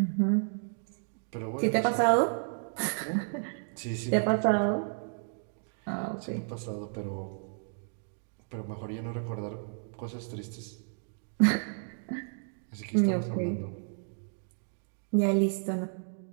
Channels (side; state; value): left; silent; digital silence